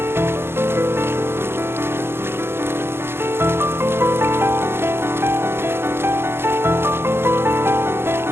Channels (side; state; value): left; late; 0.11 ms